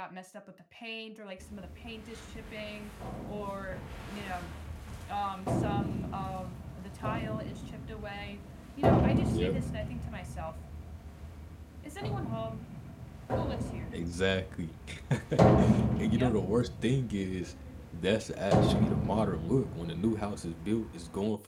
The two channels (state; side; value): identical; both; correlation 1.00